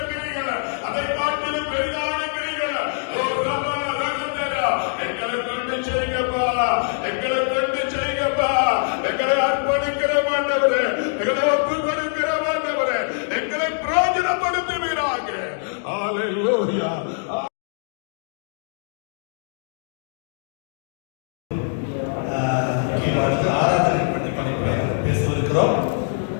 கிரிகளை, அதை காட்டிலும் பெரிதான கிரிகளை எங்களை கொண்டு செய்யப்பா, எங்களை கொண்டு செய்யப்பா, எங்களை அர்ப்பணிக்கிற மாட்டவரே, எங்களை ஒப்பு கொடுக்கிற மாட்டவரே, எங்களை பிரயோஜனப்படுத்துவீராக. ஹல்லேலூயா. பேசவிருக்கிறோம்.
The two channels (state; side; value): silent; right; digital silence